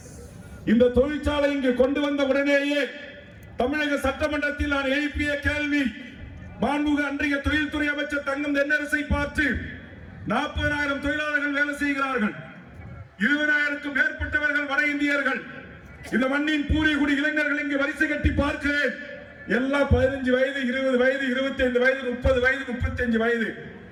இந்த தொழிற்சாலை இங்கு கொண்டு வந்த உடனேயே தமிழக சட்டமன்றத்தில் நான் எழுப்பிய கேள்வி, மாண்புமிகு அன்றைய தொழில்துறை அமைச்சர் தங்கம் தென்னரசை பார்த்து 40,000 தொழிலாளர்கள் வேலை செய்கிறார்கள், 20,000க்கும் மேற்பட்டவர்கள் வட இந்தியர்கள், இந்த மண்ணின் பூர்வீகுடி இளைஞர்கள் இங்கு வரிசை கட்டி பார்க்கிறேன். எல்லாம் 15 வயது, 20 வயது, 25 வயது, 30 வயது, 35 வயது.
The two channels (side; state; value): both; identical; correlation 1.00